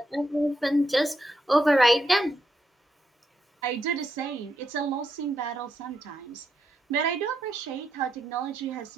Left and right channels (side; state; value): both; normal; correlation 0.80